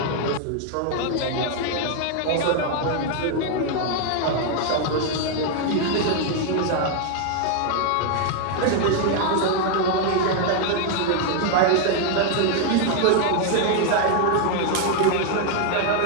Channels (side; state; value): both; different; correlation 0.00